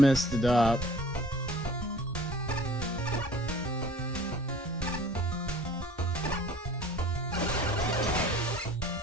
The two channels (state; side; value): normal; both; correlation 0.48